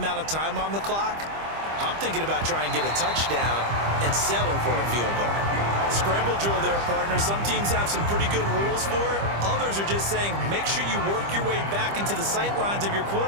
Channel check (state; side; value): late; left; 25 ms